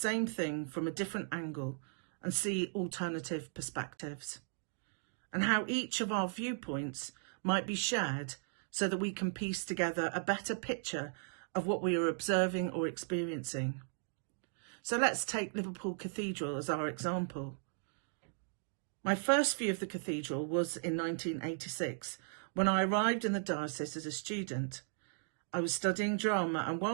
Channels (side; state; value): left; silent; digital silence